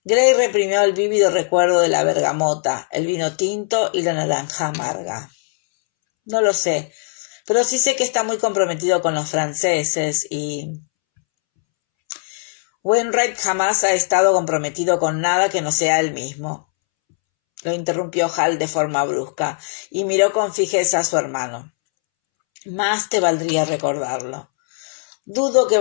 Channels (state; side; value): silent; right; 66 dB below the other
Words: Gray reprimió el vívido recuerdo de la bergamota, el vino tinto y la naranja amarga. No lo sé, pero sí sé que está muy comprometido con los franceses y... Wainwright jamás ha estado comprometido con nada que no sea él mismo. Lo interrumpió Hal de forma brusca y miró con fijeza a su hermano. Más te valdría recordarlo. Dudo que